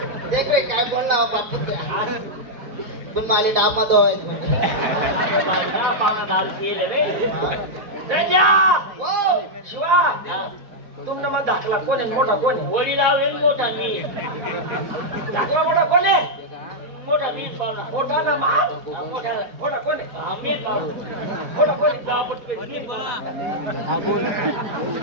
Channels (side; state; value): left; late; 4.1 ms